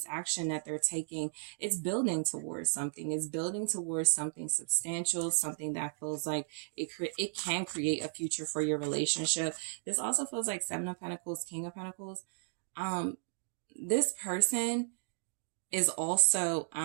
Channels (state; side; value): silent; left; digital silence